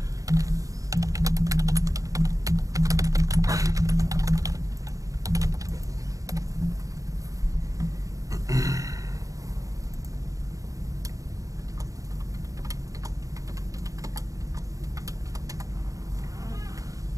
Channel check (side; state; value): left; late; 0.16 ms